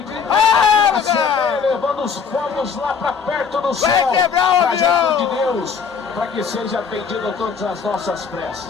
que levando os fogos lá para perto do céu, para junto de Deus, para que seja atendido todas as nossas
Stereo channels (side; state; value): right; quieter; 6.2 dB